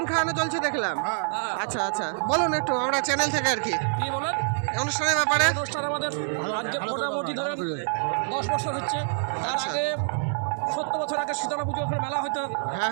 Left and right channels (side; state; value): left; silent; 61 dB below the other